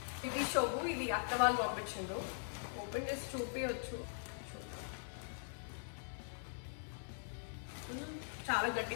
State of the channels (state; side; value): silent; right; digital silence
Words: ఇది షోబు. ఇది అత్త వాళ్ళు పంపించిండ్రు. ఓపెన్ చేసి చూపించవచ్చు. చాలా